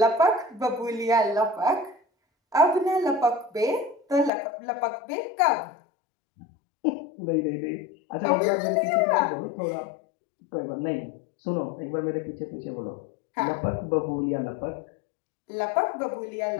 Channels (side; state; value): right; drops out; at 4.3 s